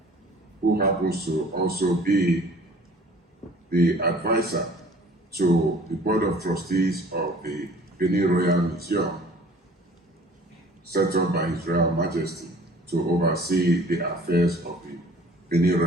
who happens to also be the advisor to the Board of Trustees of the Benin Royal Museum, set up by His Royal Majesty to oversee the affairs of the Benin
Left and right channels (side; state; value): both; normal; correlation 0.50